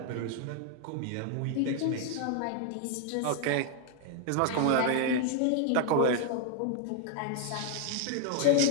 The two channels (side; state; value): both; different; correlation 0.00